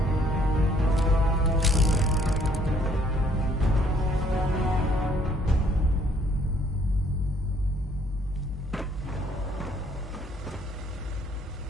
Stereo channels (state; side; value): normal; both; correlation 0.64